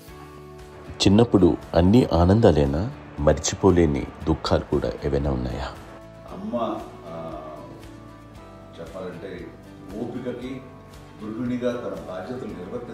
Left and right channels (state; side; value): identical; both; correlation 1.00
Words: చిన్నప్పుడు అన్ని ఆనందాలేనా, మర్చిపోలేని దుఃఖాలు కూడా ఏవైనా ఉన్నాయా? అమ్మ చెప్పాలంటే ఓపికకి, గృహిణిగా తన బాధ్యతలు